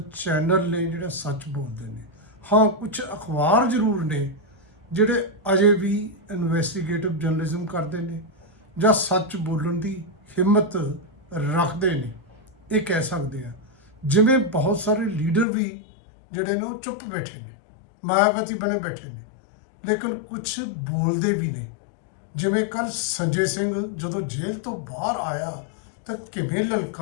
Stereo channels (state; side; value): drops out; right; at 15.5 s